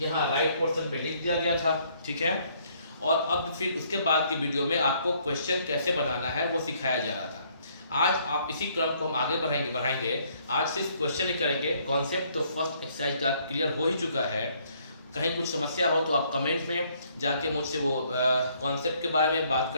राइट पोर्शन पे लिख दिया गया था, ठीक है। और अब फिर उसके बाद की वीडियो में आपको क्वेश्चन कैसे बनाना है वो सिखाया जा रहा था। आज आप इसी क्रम को हम आगे बढ़ाएंगे। आज सिर्फ क्वेश्चन ही करेंगे, कॉन्सेप्ट तो फर्स्ट एक्सरसाइज का क्लियर हो ही चुका है। कहीं कुछ समस्या हो तो आप कमेंट में जाके मुझसे वो कॉन्सेप्ट के बारे में बात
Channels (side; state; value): both; inverted; correlation -0.66